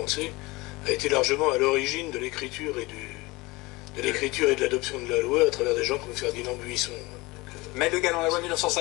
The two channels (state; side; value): quieter; right; 22.6 dB